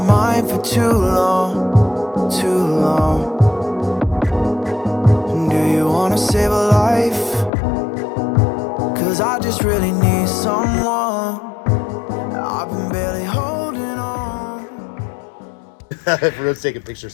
for too long, too long. Do you want to save a life? 'Cause I just really need someone. I've been barely holding on. Everyone's taking pictures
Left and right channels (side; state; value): right; drops out; at 7.5 s